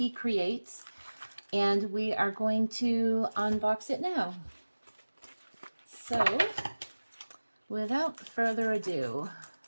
And we are going to unbox it now. So, without further ado,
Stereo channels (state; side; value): inverted; both; correlation -1.00